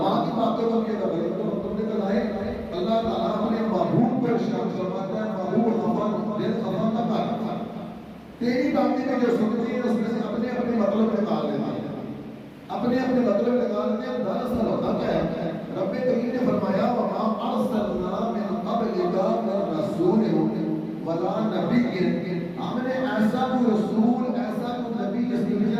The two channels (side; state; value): both; identical; correlation 1.00